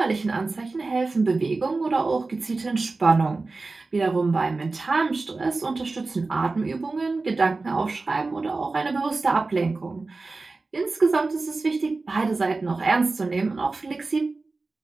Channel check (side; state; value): left; quieter; 3.6 dB